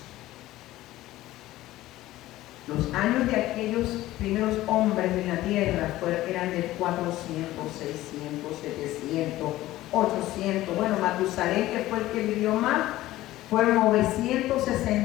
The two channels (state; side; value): quieter; right; 16.0 dB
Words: Los años de aquellos primeros hombres de la tierra eran de 400, 600, 700, 800. Bueno, Matusalén, que fue el que vivió más, fueron